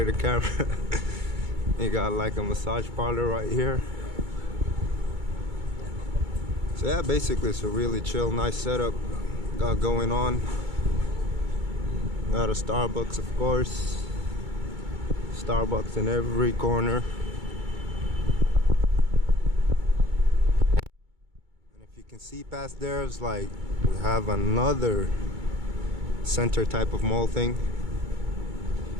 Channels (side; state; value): left; late; 2.2 ms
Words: the camera. You got like a massage parlor right here. So yeah, basically it's a really chill, nice setup got going on. Got a Starbucks, of course. Starbucks in every corner. And if you can see past there, it's like we have another center type of mall thing.